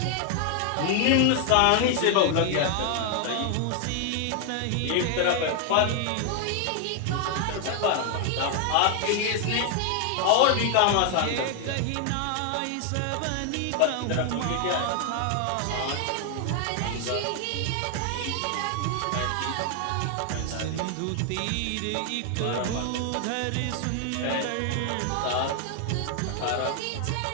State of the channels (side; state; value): both; different; correlation 0.00